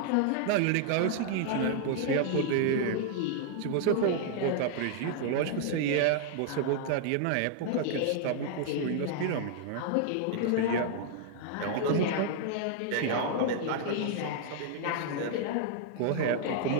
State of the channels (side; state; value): both; different; correlation -0.01